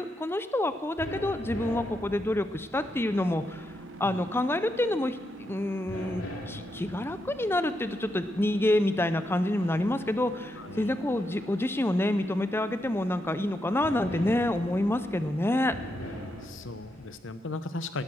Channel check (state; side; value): normal; both; correlation 0.82